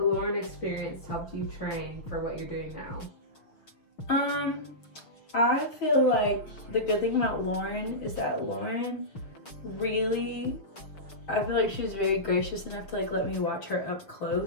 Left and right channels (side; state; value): right; late; 6.4 ms